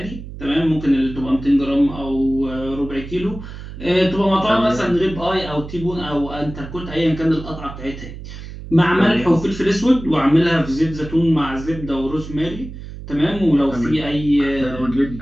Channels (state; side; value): noise; right; hum, 12 dB below the sound